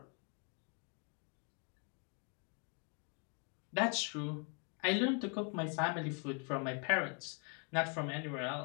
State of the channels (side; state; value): right; quieter; 37.6 dB